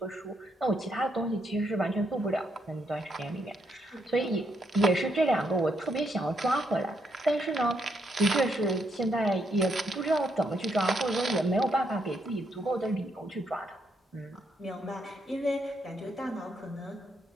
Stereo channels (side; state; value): both; normal; correlation 0.77